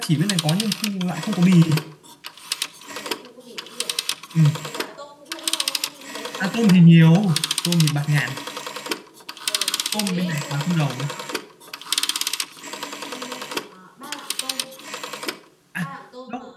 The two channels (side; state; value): both; identical; correlation 1.00